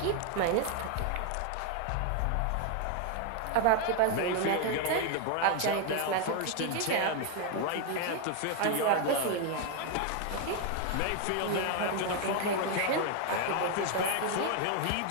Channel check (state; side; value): different; both; correlation 0.01